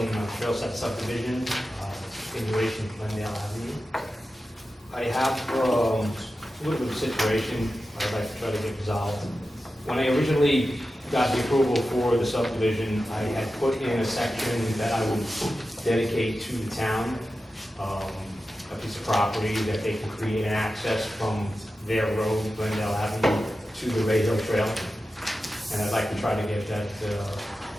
Sept subdivision, continuation of Glendale Avenue. I have a little bit of a situation I'd like to try to get resolved. When I originally got the approval for the subdivision, I had put in a section that I would dedicate to the town, a piece of property that they can create an access from their road, Glendale Avenue, to the Ray Hill Trail. And I'd like to try to get that,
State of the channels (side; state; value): both; normal; correlation 0.92